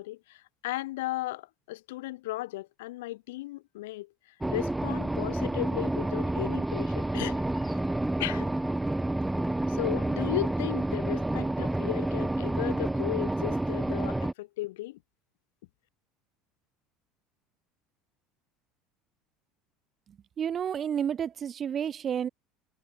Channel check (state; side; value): normal; both; correlation 0.70